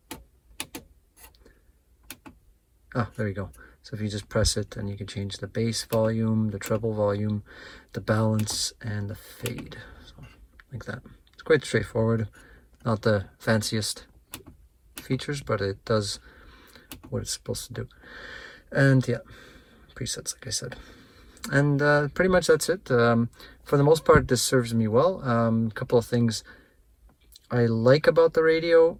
Ah, there you go. So if you just press it, and you can change the bass volume, the treble volume, the balance, and the fade. So like that. It's quite straightforward. Not the fanciest features, but it does what it's supposed to do. And yeah, presets, like I said. And pretty much that's it. For the most part, this serves me well. A couple of things I like about the radio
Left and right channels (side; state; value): both; identical; correlation 1.00